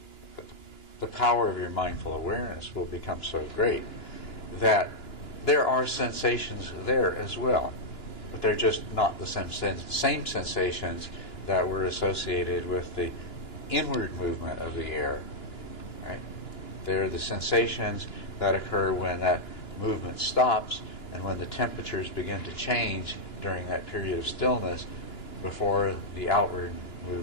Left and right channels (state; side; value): late; right; 2.9 ms